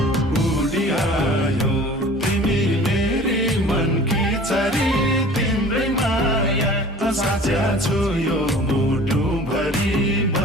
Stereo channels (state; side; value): normal; both; correlation 0.45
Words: उडी आयो तिमी मेरी मनकी चरी तिम्रै माया साचा छु यो मुटु भरि